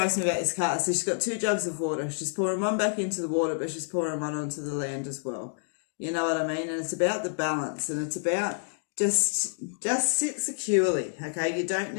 me about this card. So she's got 2 jugs of water. She's pouring one back into the water, but she's pouring one onto the land as well. You know what I mean? And it's about the balance, and it's about just sit securely, okay? You don't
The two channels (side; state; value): right; silent; digital silence